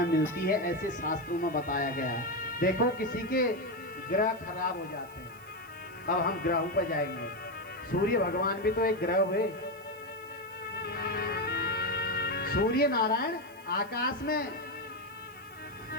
मिलती है। ऐसे शास्त्रों में बताया गया है। देखो, किसी के ग्रह खराब हो जाते हैं। अब हम ग्रहों पर जाएंगे। सूर्य भगवान भी तो एक ग्रह हुए। सूर्य नारायण आकाश में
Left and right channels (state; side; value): noise; right; hiss, 24 dB below the sound